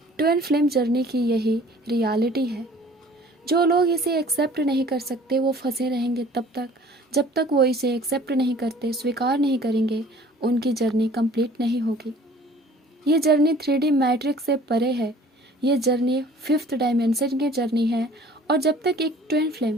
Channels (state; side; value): normal; both; correlation 0.51